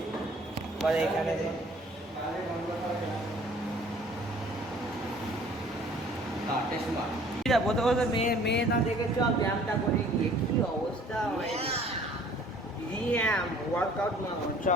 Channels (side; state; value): both; normal; correlation 0.53